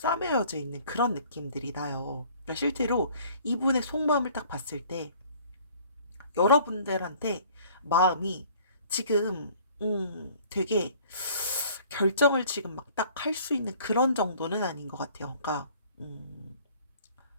있는 그런 느낌들이 나요. 그러니까 실제로 이분의 속마음을 딱 봤을 때 여러분들한테 마음이 지금 되게 결정을 지금 막 딱 할 수 있는 그런 정도는 아닌 것 같아요. 그러니까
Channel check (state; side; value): inverted; both; correlation -0.54